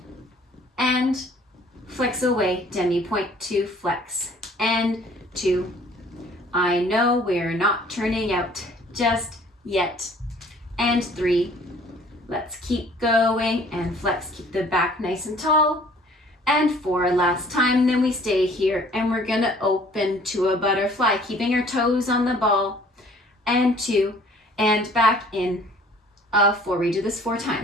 And flex away, demi-pointe, 2, flex, and 2. I know we're not turning out just yet. And 3. Let's keep going and flex, keep the back nice and tall. And 4, last time, then we stay here and we're gonna open to a butterfly, keeping your toes on the ball. And 2, and back in, 4, we do this 4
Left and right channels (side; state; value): both; normal; correlation 0.54